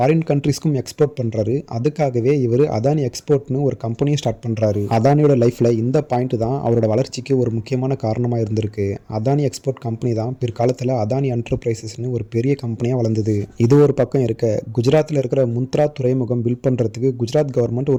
ஃபாரின் கண்ட்ரிஸ்க்கும் எக்ஸ்போர்ட் பண்ணுறாரு. அதுக்காகவே இவர் அதானி எக்ஸ்போர்ட்னு ஒரு கம்பெனியை ஸ்டார்ட் பண்ணுறாரு. அதானியோட லைஃப்பில் இந்த பாயிண்ட் தான் அவரோட வளர்ச்சிக்கு ஒரு முக்கியமான காரணமாக இருந்திருக்கு. அதானி எக்ஸ்போர்ட் கம்பெனி தான் பிற்காலத்தில் அதானி என்டர்பிரைசஸ்னு ஒரு பெரிய கம்பெனியாக வளர்ந்தது. இது ஒரு பக்கம் இருக்க, குஜராத்தில் இருக்கிற முந்த்ரா துறைமுகம் பில்ட் பண்ணுறதுக்கு குஜராத் கவர்மெண்ட்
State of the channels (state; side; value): identical; both; correlation 1.00